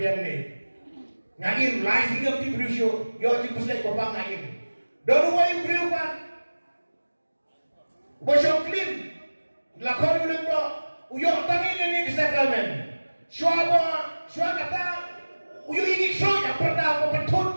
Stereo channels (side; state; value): both; inverted; correlation -1.00